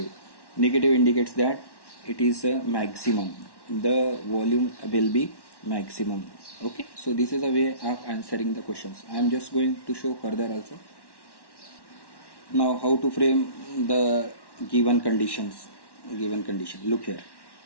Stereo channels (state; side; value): late; right; 1.1 ms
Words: Negative indicates that it is a maximum. The volume will be maximum. Okay, so this is a way of answering the questions. I am just going to show further also. Now how to frame the given conditions. Look here.